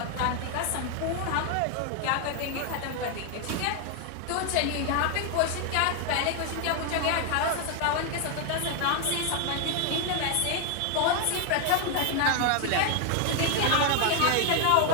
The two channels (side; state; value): both; different; correlation 0.00